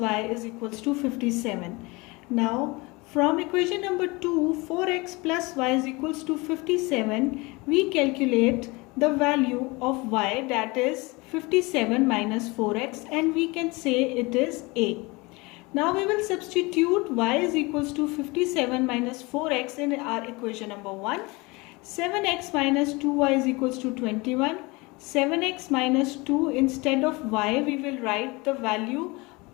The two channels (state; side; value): quieter; right; 24.9 dB